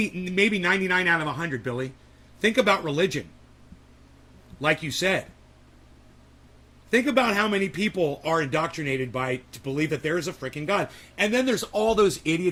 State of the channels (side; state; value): both; identical; correlation 1.00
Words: 99 out of 100, Billy. Think about religion. Like you said. Think about how many people are indoctrinated to believe that there is a freaking God. And then there's all those